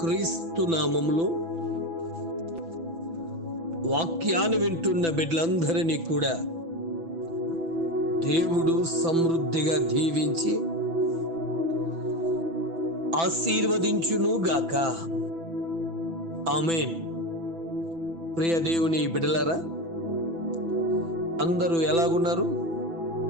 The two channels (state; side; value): late; left; 6.0 ms